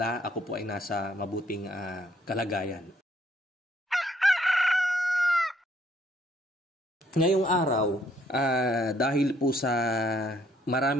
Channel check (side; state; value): both; normal; correlation 0.67